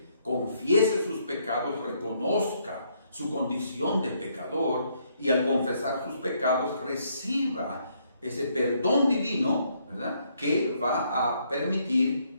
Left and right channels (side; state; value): both; inverted; correlation -0.71